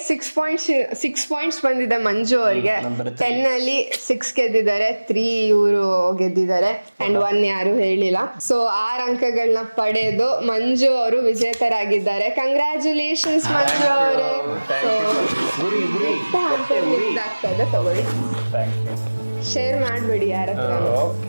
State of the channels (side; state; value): both; inverted; correlation -1.00